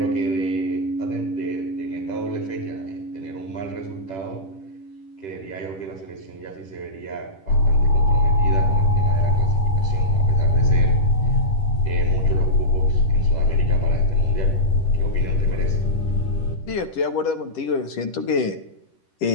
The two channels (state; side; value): late; right; 10 ms